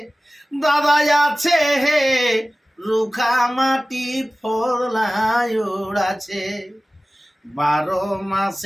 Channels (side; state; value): both; normal; correlation 0.97